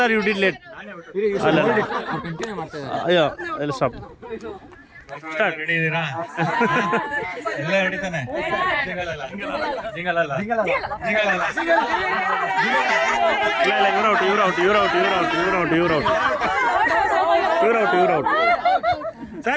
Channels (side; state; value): both; identical; correlation 1.00